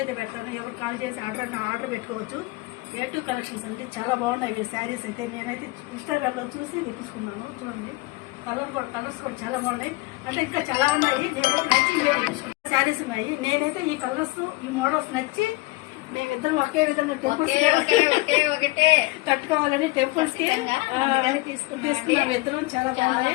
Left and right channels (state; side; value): quieter; right; 22.5 dB